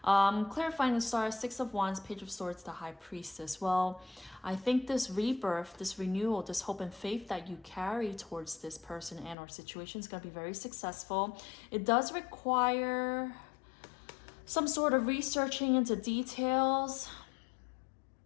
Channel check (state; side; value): drops out; right; at 9.3 s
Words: Clarifying the Star, Six of Wands, Page of Swords, the High Priestess. Well, I think this rebirth, this renewal, this hope and faith that you carry towards this person and or situation is going to be very successful. It does require some sort of researching into details.